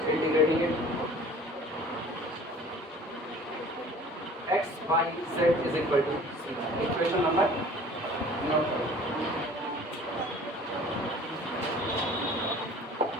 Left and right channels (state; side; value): normal; both; correlation 0.47